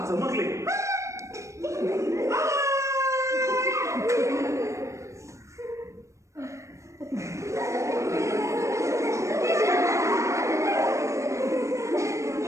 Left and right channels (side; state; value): left; late; 0.15 ms